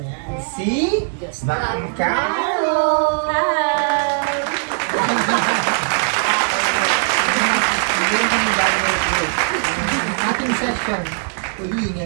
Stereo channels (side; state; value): left; silent; digital silence